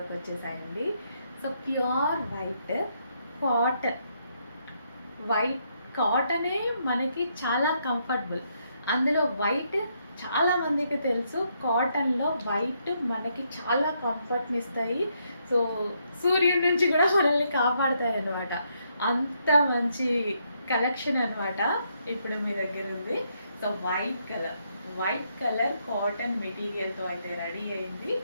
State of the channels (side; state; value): both; inverted; correlation -0.76